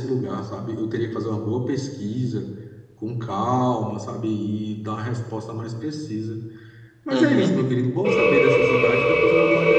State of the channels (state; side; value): identical; both; correlation 1.00